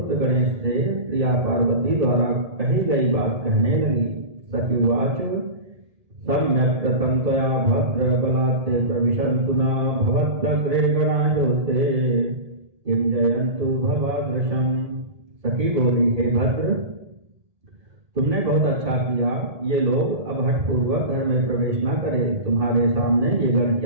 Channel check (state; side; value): late; left; 1.8 ms